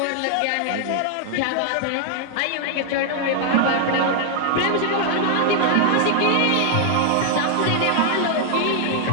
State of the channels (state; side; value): different; both; correlation 0.00